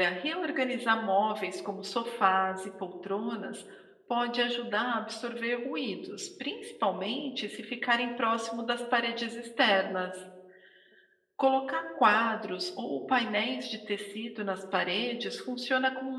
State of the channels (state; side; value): identical; both; correlation 1.00